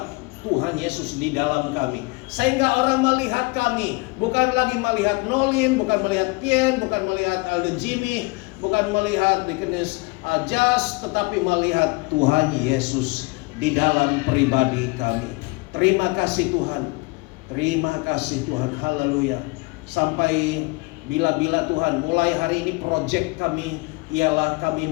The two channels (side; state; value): right; quieter; 26.1 dB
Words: Tuhan Yesus di dalam kami. Sehingga orang melihat kami, bukan lagi melihat Nolin, bukan melihat Tien, bukan melihat Aldo Jimmy, bukan melihat Deaconess Jas, tetapi melihat Tuhan Yesus di dalam pribadi kami. Terima kasih Tuhan. Terima kasih Tuhan. Haleluya. Sampai bila-bila Tuhan, mulai hari ini project kami ialah kami